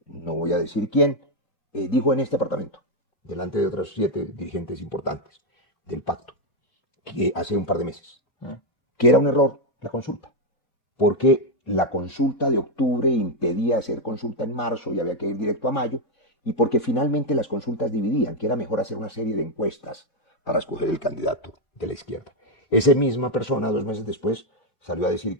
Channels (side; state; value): right; late; 3.5 ms